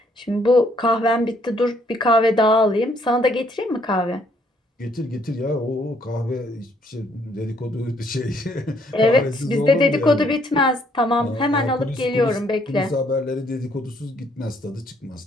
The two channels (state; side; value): normal; both; correlation 0.67